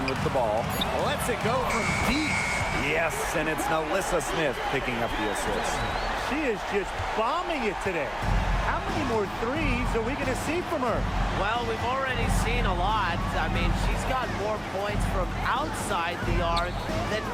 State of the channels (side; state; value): both; identical; correlation 1.00